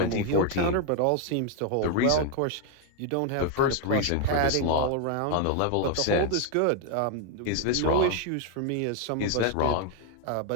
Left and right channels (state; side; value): different; both; correlation 0.00